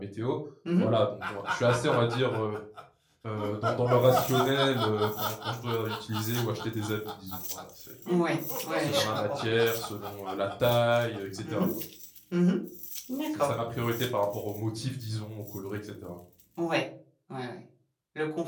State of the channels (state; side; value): identical; both; correlation 1.00